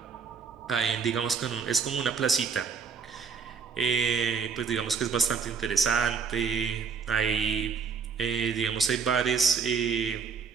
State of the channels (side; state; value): left; quieter; 5.8 dB